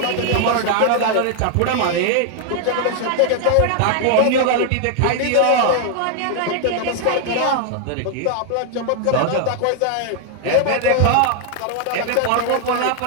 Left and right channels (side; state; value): both; different; correlation 0.00